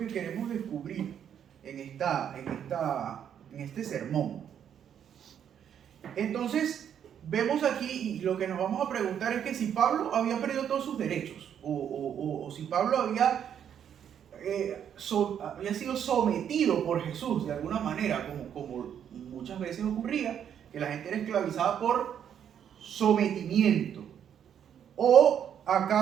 queremos descubrir en este sermón. Entonces, vemos aquí, y lo que nos vamos a preguntar es que si Pablo había perdido todos sus derechos, o si Pablo había sido sometido por Jesús de alguna manera, como muchas veces ocurría, que la gente era esclavizada por sometimiento. ¿O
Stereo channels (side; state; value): left; quieter; 8.9 dB